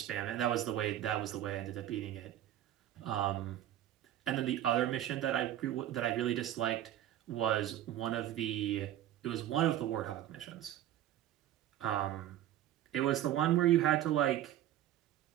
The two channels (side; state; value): left; quieter; 12.5 dB